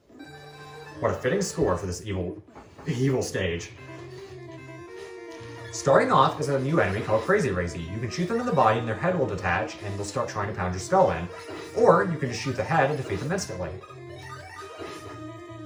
What a fitting score for this evil stage. Starting off is a new enemy called Crazy Razy. You can shoot them in the body and their head will detach and they'll start trying to pound your skull in. Or you can just shoot the head and defeat them instantly.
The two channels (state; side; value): identical; both; correlation 1.00